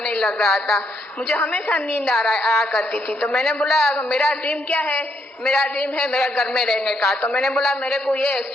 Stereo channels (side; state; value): both; normal; correlation 0.75